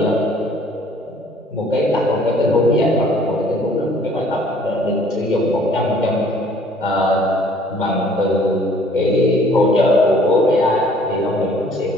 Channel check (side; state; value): both; normal; correlation 0.57